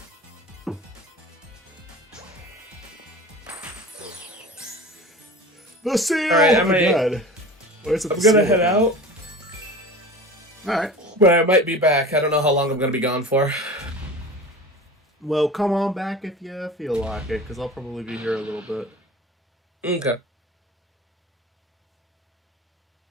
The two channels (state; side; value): normal; both; correlation 0.36